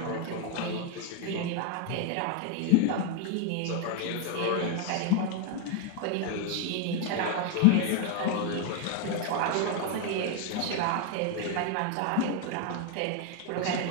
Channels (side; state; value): both; different; correlation 0.01